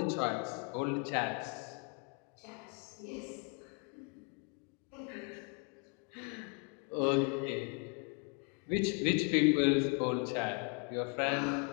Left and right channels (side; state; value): right; quieter; 35.4 dB